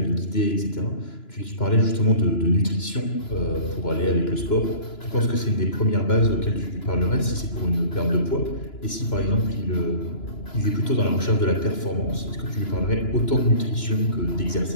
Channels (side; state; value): right; late; 2.9 ms